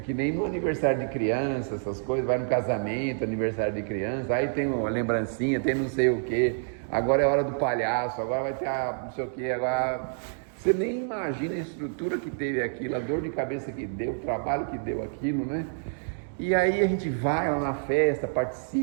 que nem no aniversário de criança, essas coisas, vai no casamento, aniversário de criança, aí tem uma lembrancinha, tem não sei o quê, agora é hora do palhaço, agora vai ter não sei o quê, agora... Você nem imagina a estrutura que teve aquilo, a dor de cabeça que deu, o trabalho que deu aquilo, né? E aí a gente vai lá na festa,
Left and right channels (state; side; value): silent; left; digital silence